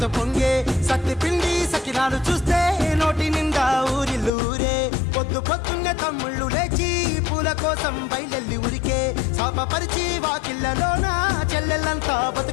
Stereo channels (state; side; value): drops out; right; at 4.3 s